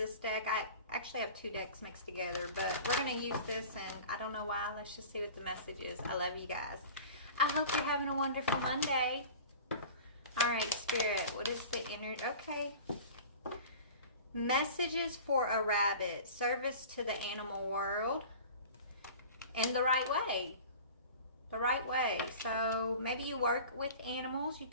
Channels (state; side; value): inverted; both; correlation -0.39